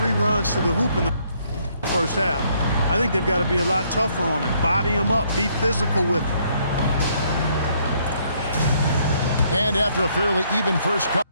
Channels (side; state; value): both; inverted; correlation -0.68